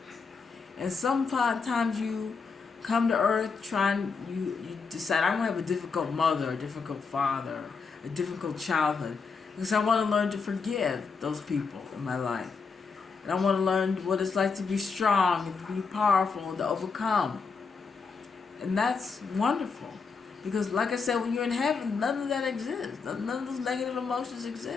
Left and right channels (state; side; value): quieter; right; 5.1 dB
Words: And sometimes you come to Earth you decide, I'm going to have a difficult mother, a difficult father, a difficult childhood. Because I want to learn to forgive those people in my life. And I want to learn what it's like to be strong and to be powerful and to overcome. And that's wonderful. Because like I said, when you're in heaven, none of that exists. None of those negative emotions